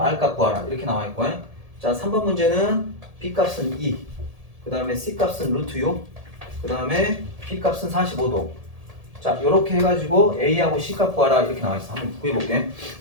값 구하라. 이렇게 나와 있고. 자, 3번 문제는 B 값은 2, 그 다음에 C 값은 루트 6, 그 다음에 B 값은 45도. 자, 이렇게 해가지고 A하고 C 값 구하라. 이렇게 나와 있어. 한번 구해볼게.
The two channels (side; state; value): left; late; 1.7 ms